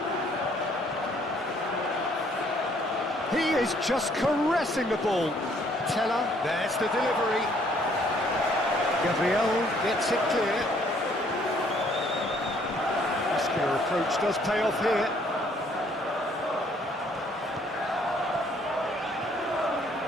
He is just caressing the ball. Teller, there's the delivery. Gabriel gets it clear. Muscular approach does pay off here.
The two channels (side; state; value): both; normal; correlation 0.63